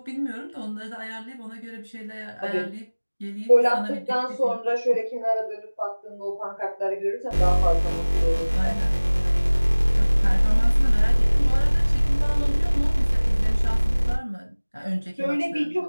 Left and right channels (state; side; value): inverted; both; correlation -1.00